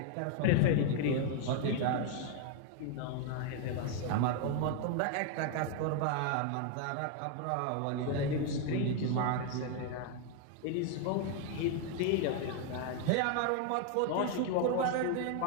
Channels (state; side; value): different; both; correlation 0.01